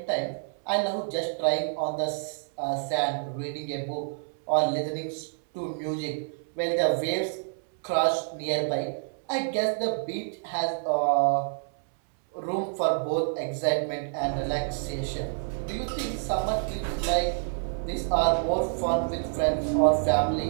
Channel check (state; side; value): silent; left; 59 dB below the other